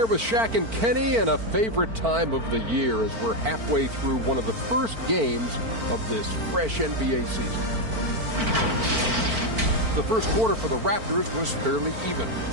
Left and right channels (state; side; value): late; left; 4.4 ms